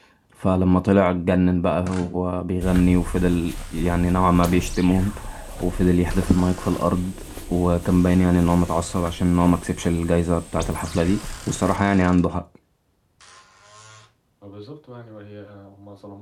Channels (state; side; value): identical; both; correlation 1.00